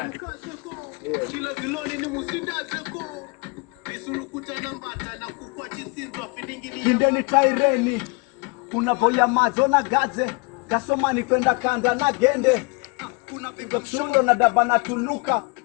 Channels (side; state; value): right; quieter; 28.7 dB